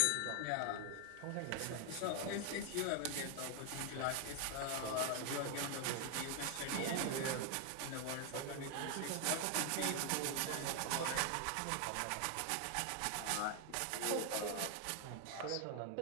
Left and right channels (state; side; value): different; both; correlation 0.00